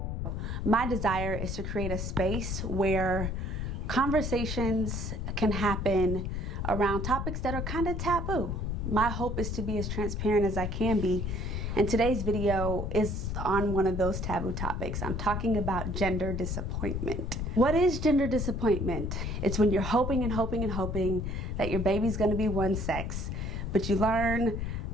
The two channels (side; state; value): left; noise; rumble, 3 dB below the sound